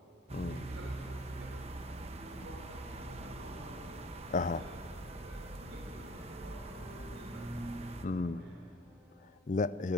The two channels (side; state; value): both; normal; correlation 0.50